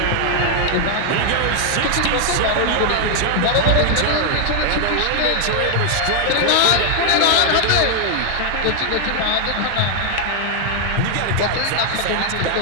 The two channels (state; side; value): different; both; correlation 0.00